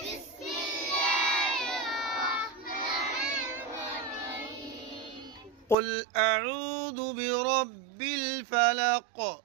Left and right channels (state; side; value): drops out; left; at 5.8 s